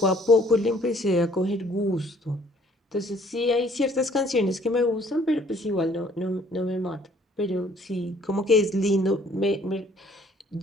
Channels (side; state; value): both; normal; correlation 0.60